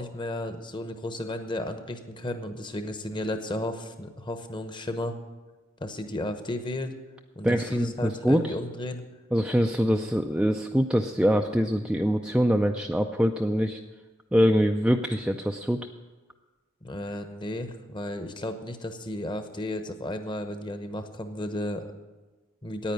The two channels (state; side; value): normal; both; correlation 0.89